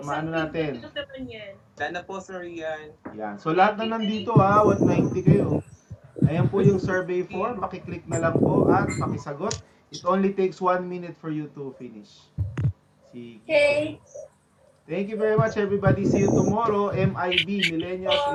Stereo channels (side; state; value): both; identical; correlation 1.00